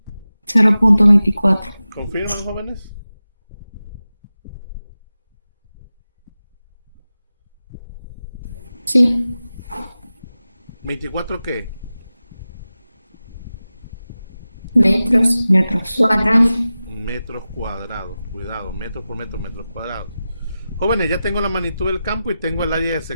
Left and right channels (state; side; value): inverted; both; correlation -0.94